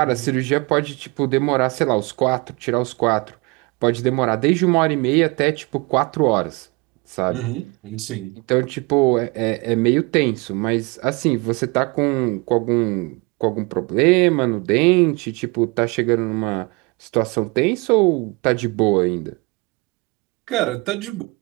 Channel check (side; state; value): left; quieter; 27.7 dB